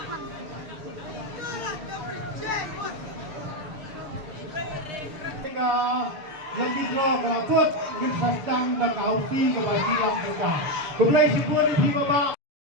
ka lagi draw kelakut ngin sasdang da kausi ke basi lang kita. Kumlay si Puri Pi Baba.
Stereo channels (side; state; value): left; late; 6.9 ms